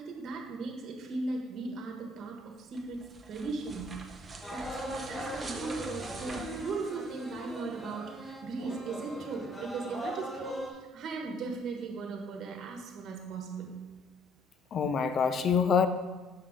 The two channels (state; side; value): normal; both; correlation 0.62